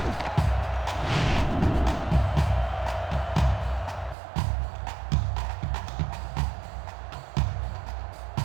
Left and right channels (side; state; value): left; drops out; at 4.2 s